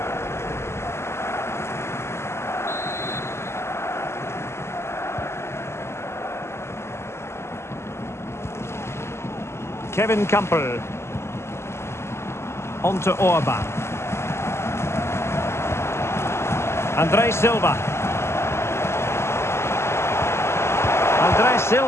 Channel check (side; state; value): right; late; 0.13 ms